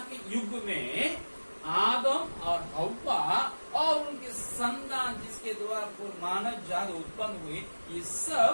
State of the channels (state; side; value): inverted; both; correlation -1.00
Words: के युग में आदम और हव्वा और उनके संतान जिसके द्वारा मानव जाति उत्पन्न हुई, ये सब